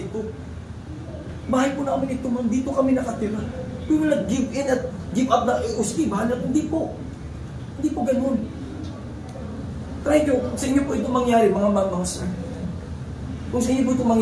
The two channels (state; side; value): identical; both; correlation 1.00